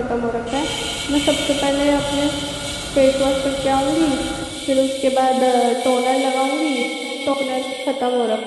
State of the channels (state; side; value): identical; both; correlation 1.00